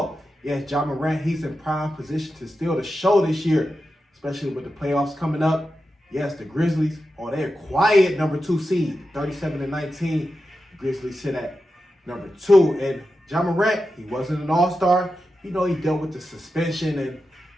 Yes, Ja Morant, he's in prime position to steal the show this year, especially with the playoffs coming up. Yes, the Grizzlies, they're quiet number 2 seed, 37-19. The Grizzlies sit at number 2, and Ja Morant, he wasn't an all-star. He dealt with the suspension, and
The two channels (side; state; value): both; normal; correlation 0.90